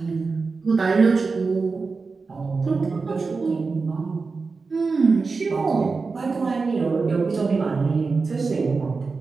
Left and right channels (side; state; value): left; quieter; 4.4 dB